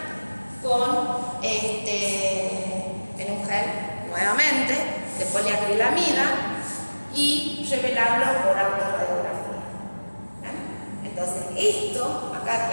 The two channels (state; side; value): inverted; both; correlation -1.00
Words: en un gel nuevamente de poliacrilamida y revelarlo por autorradiografía. Entonces esto, acá,